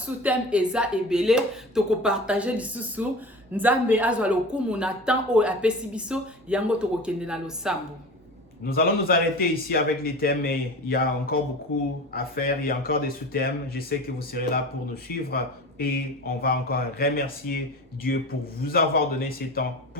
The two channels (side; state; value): both; normal; correlation 0.34